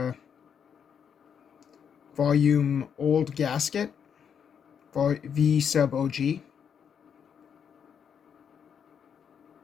volume old gasket, V sub OG.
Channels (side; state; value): right; quieter; 7.6 dB